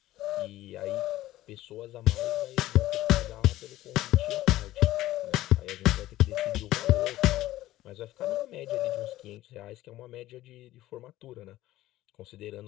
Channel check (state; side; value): quieter; right; 15.5 dB